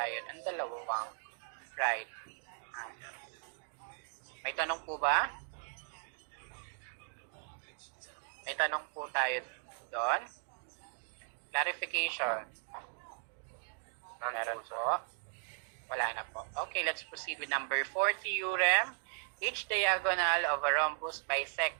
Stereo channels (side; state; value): left; silent; digital silence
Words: ng dalawang right angles. May tanong po ba? May tanong po tayo doon. Clarification. Meron po. Wala na po. Okay, let's proceed with number 4 theorem. Each diagonal of a rhombus